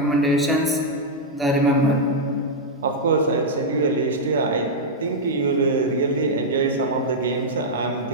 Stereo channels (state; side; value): normal; both; correlation -0.04